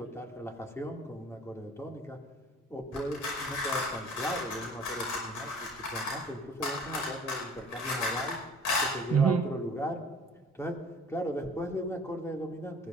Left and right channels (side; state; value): both; normal; correlation 0.49